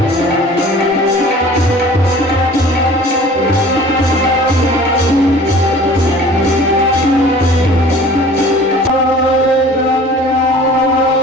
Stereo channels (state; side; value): normal; both; correlation 0.46